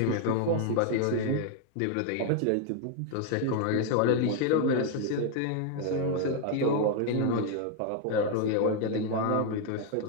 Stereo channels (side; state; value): both; different; correlation 0.00